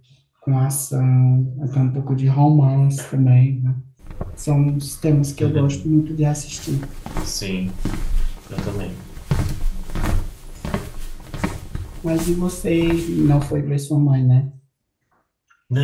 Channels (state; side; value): identical; both; correlation 1.00